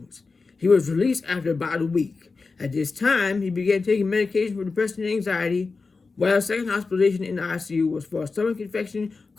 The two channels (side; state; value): right; quieter; 4.2 dB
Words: He was released after about a week. At this time, he began taking medication for depression and anxiety, while his second hospitalization in the ICU was for a stomach infection